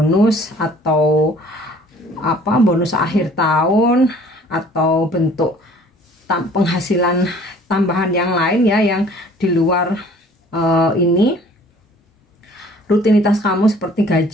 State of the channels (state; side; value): normal; both; correlation 0.53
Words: atau apa, bonus akhir tahun atau bentuk penghasilan tambahan yang lain ya, yang di luar ini rutinitas kamu seperti